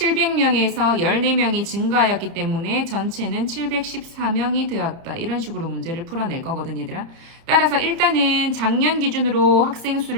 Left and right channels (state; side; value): late; left; 30 ms